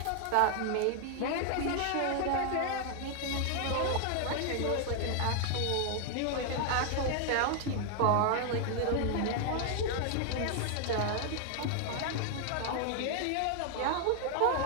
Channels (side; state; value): both; different; correlation 0.00